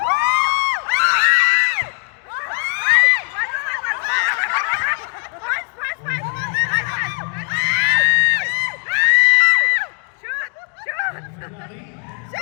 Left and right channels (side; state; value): right; quieter; 37.2 dB